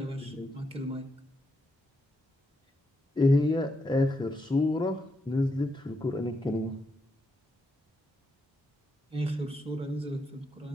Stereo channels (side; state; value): both; normal; correlation 0.82